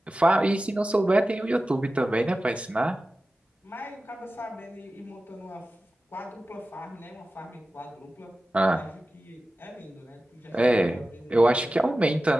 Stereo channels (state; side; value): normal; both; correlation 0.95